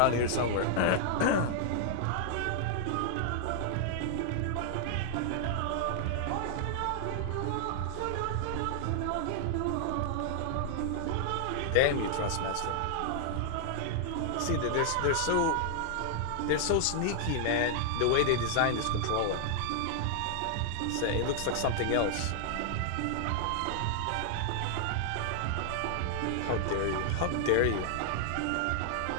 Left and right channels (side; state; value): both; different; correlation 0.00